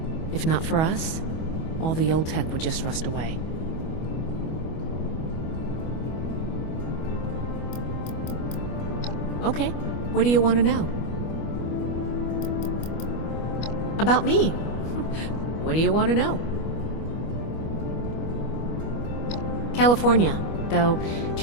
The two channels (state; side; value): late; right; 25 ms